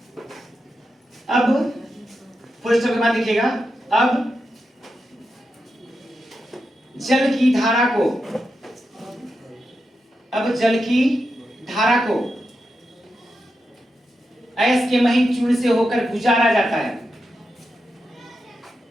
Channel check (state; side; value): normal; both; correlation 0.88